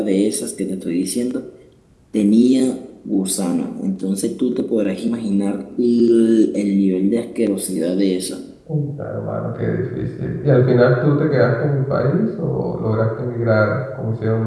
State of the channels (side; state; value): both; identical; correlation 1.00